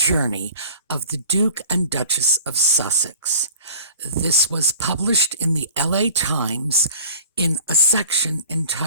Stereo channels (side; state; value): both; inverted; correlation -0.45